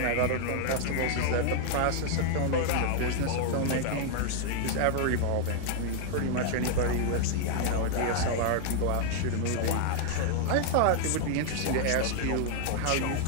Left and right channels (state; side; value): different; both; correlation 0.00